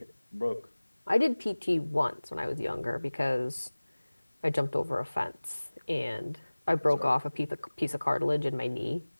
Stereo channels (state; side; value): inverted; both; correlation -1.00